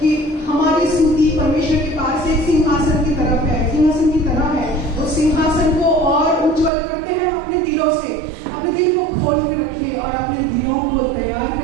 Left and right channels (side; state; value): left; drops out; at 6.7 s